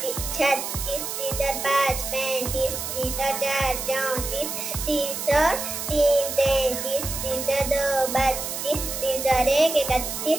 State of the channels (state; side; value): noise; right; hiss, 5 dB below the sound